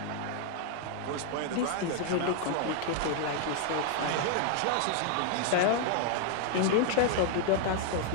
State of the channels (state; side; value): different; both; correlation 0.00